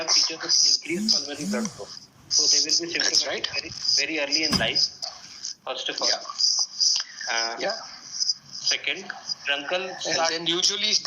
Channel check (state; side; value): identical; both; correlation 1.00